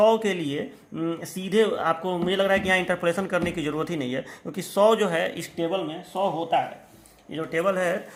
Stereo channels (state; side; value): identical; both; correlation 1.00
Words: के लिए सीधे आपको मुझे लग रहा है कि यहाँ इंटरपोलेशन करने की ज़रूरत ही नहीं है, क्योंकि 100 जो है इस टेबल में 100 होता है। ये जो टेबल है